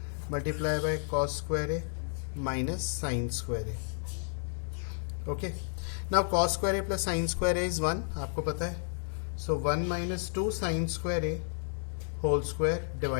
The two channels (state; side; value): silent; right; digital silence